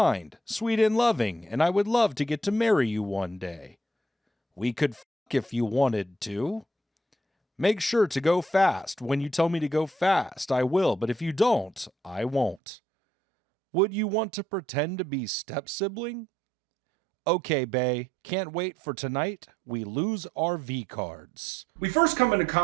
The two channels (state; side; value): drops out; left; at 12.6 s